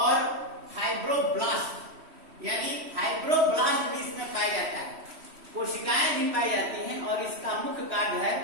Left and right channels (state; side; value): late; left; 3.1 ms